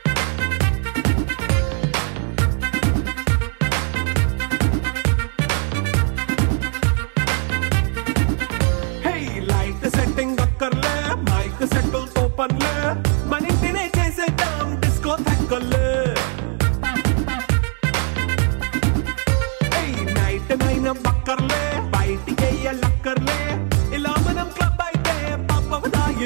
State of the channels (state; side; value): quieter; left; 38.7 dB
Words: Hey, light setting akkarle, mic settle to panle, manintine chesedam disco thakkale. నైన బక్కర్లే బయటికి లక్కర్లే ఇలా మనం క్లబ్ అయితే